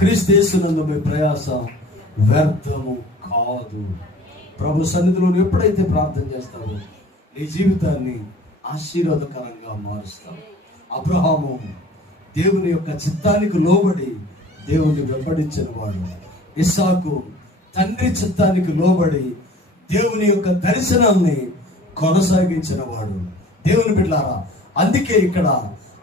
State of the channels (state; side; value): normal; both; correlation 0.46